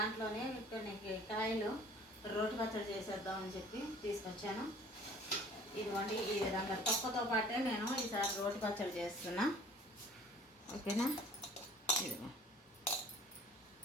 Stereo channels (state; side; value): normal; both; correlation 0.51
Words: కొన్ని కాయలు రోటి పచ్చడి చేసేద్దామని చెప్పి తీసుకొచ్చాను. ఇదిగోండి, ఈ విధంగా తొక్కతో పాటే నేను ఈసారి రోటి పచ్చడి చేస్తున్నా. ఓకేనా? ఇదిగో